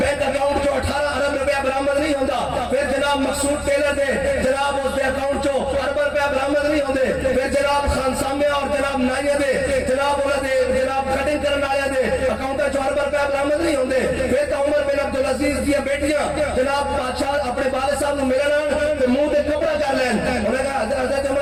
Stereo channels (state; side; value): identical; both; correlation 1.00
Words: اکاؤنٹ جو 18 ارب روپیہ برآمد نہیں ہوندہ پھر جناب مقصود ٹیلر دے جناب اس دے اکاؤنٹ جو ارب روپیہ برآمد نہیں ہوندے پھر جناب خان سامے اور جناب نائیہ دے جناب انہوں دے جناب کٹنگ کرنا آیا دے اکاؤنٹ جو ارب روپیہ برآمد نہیں ہوندے پھر تو عمر بن عبدالعزیز دیا بیٹیاں جناب بادشاہ اپنے والد صاحب نے ملنا تو منہ دے کپڑا کر لین انہوں نے کہا حضرت